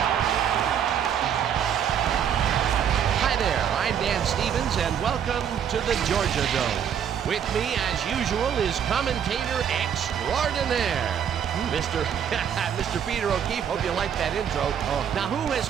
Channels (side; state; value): left; quieter; 8.5 dB